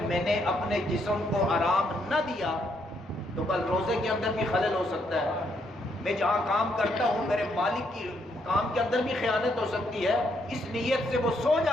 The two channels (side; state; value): both; normal; correlation 0.74